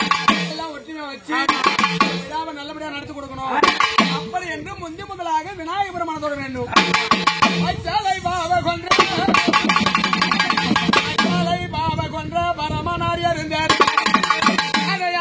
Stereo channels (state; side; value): identical; both; correlation 1.00